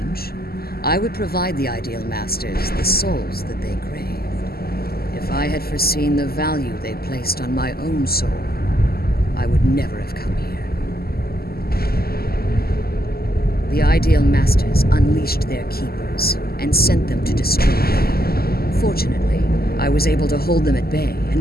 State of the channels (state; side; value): late; right; 0.45 ms